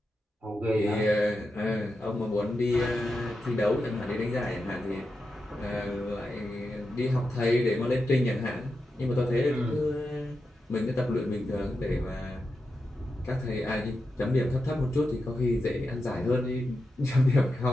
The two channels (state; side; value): normal; both; correlation 0.89